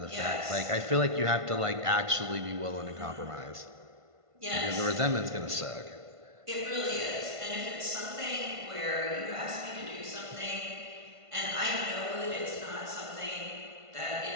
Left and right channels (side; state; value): left; late; 1.5 ms